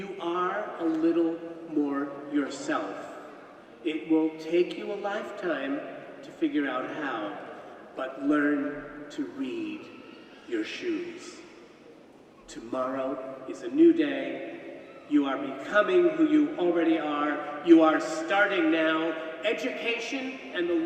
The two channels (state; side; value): identical; both; correlation 1.00